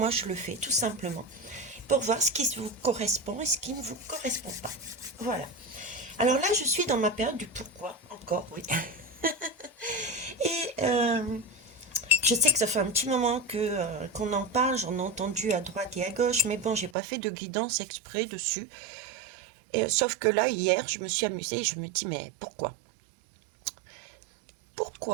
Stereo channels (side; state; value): left; drops out; at 16.9 s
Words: je le fais, tout simplement, pour voir ce qui vous correspond et ce qui ne vous correspond pas. Voilà. Alors là, je suis dans ma période du pourquoi, encore, oui. Et je sais que ça fait un petit moment qu'on en parle, j'en ai entendu à droite et à gauche, mais bon, j'ai pas fait de guidance exprès dessus. Et, sauf que là, hier, je me suis amusée et je me dis, mais pourquoi?